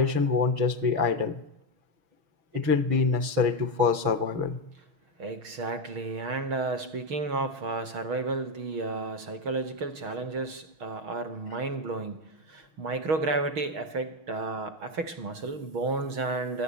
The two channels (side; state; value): left; late; 6.4 ms